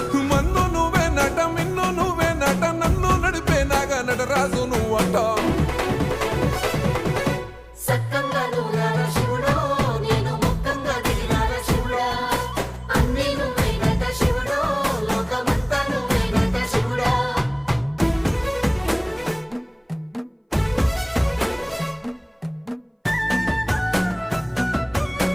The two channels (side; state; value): both; identical; correlation 1.00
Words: మన్ను నువ్వే నట మిన్ను నువ్వే నట నన్ను నడిపే నాగా నటరాజు నువ్వట